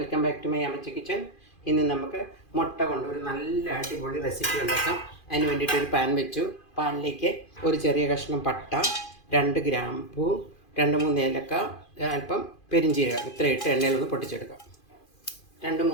back to my Ammachi kitchen. ഇന്ന് നമുക്ക് മുട്ട കൊണ്ട് ഒരു നല്ല അടിപൊളി റെസിപ്പി ഉണ്ടാക്കാം. അതിന് വേണ്ടിയിട്ടൊരു പാൻ വെച്ചു. പാനിലേക്ക് ഒരു ചെറിയ കഷ്ണം പട്ട, 2 ഗ്രാമ്പൂ, 2-3 ഏലക്ക, അല്പം പെരിഞ്ചീരകം ഇത്ര ഇട്ട് എണ്ണയിലൊന്ന് പൊട്ടിച്ചെടുക്കാം.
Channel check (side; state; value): right; late; 2.4 ms